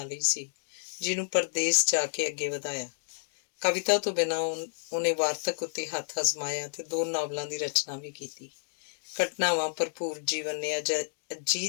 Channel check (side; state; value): right; silent; digital silence